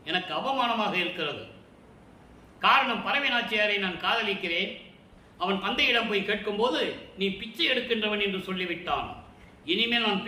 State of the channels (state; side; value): identical; both; correlation 1.00